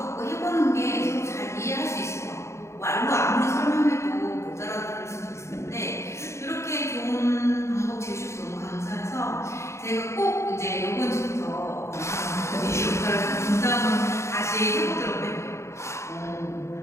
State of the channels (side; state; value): right; late; 0.14 ms